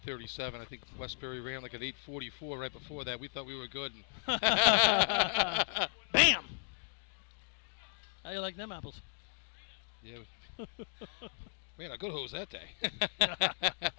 I think Westbury ran like an 8:44 right before that. We thought we were good. Bam! How you like them apples? Yeah. Man, a good hose that day.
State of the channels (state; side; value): silent; right; digital silence